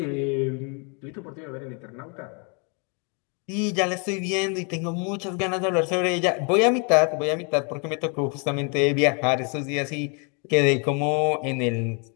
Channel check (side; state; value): right; quieter; 35.9 dB